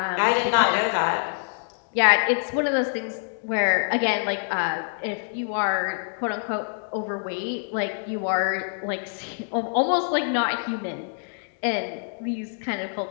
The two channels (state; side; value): silent; right; digital silence